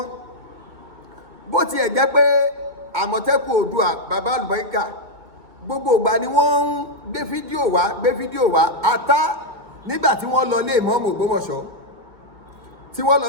bó tiẹ̀ jẹ́ pé Àmọ̀tẹ́kùn Oòduà bàbá àlùbáríkà gbogbo ìgbà ni wọ́n ń gbé fídíò wá ata nígbà tí wọ́n lọ lé ìmáàmù Ògbómọ̀ṣọ́ tí wọ́n lọ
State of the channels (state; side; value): late; left; 2.2 ms